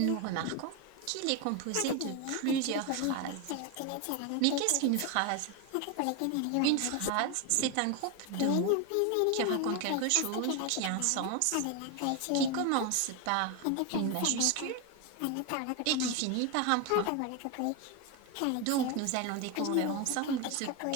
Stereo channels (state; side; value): different; both; correlation 0.02